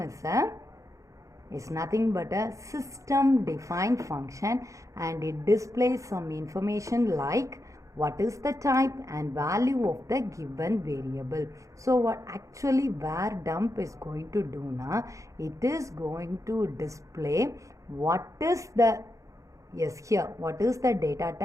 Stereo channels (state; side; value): late; left; 0.15 ms